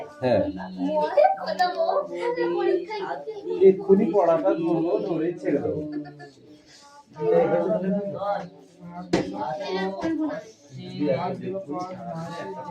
হ্যাঁ এক্ষুনি পড়াটা ধরবো, ধরে ছেড়ে দেবো।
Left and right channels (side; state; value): both; identical; correlation 1.00